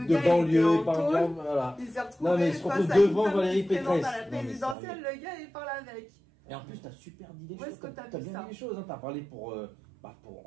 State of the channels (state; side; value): drops out; left; at 4.8 s